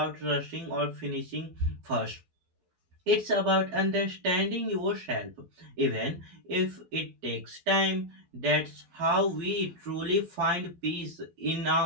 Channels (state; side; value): late; left; 12 ms